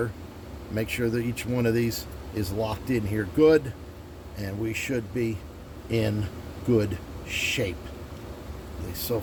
Make sure that each one of these is locked in here good, and we should be in good shape. At least so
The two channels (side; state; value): both; identical; correlation 1.00